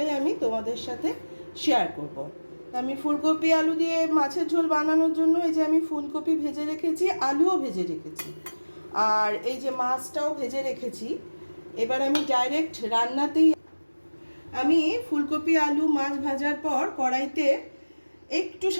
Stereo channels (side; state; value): both; inverted; correlation -1.00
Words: আমি তোমাদের সাথে শেয়ার করব। আমি ফুলকপি আলু দিয়ে মাছের ঝোল বানানোর জন্য এই যে আমি ফুলকপি ভেজে রেখেছি, আলুও ভেজে রেখেছি, আর এই যে মাছটাও ভেজে রেখেছি। এবার আমি ডাইরেক্ট রান্নাতেই আমি ফুলকপি আলু মাছ ভাজার পর কড়াইতে একটু